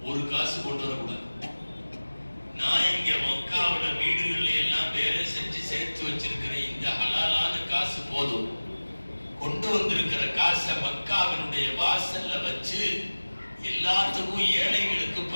ஒரு காசு கொண்டு வரக்கூடாது. நான் இங்க மக்காவோட வீடுகள்ல எல்லாம் வேலை செஞ்சு சேர்த்து வச்சிருக்கிற இந்த ஹலாலான காசு போதும், கொண்டு வந்திருக்கிற காசை மக்காவினுடைய வாசல்ல வச்சு எல்லாத்துக்கும் ஏழைகளுக்கு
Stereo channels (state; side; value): inverted; both; correlation -1.00